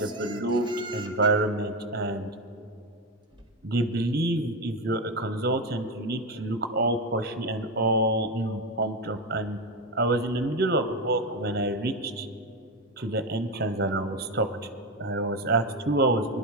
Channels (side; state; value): both; normal; correlation 0.15